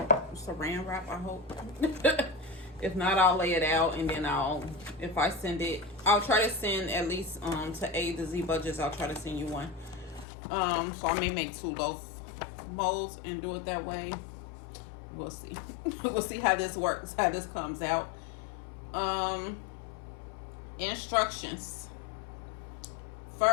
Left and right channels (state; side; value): drops out; right; at 10.2 s